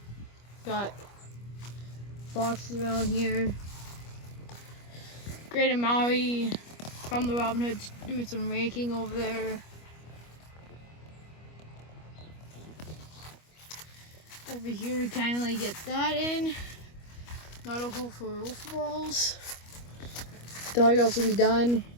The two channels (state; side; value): late; right; 25 ms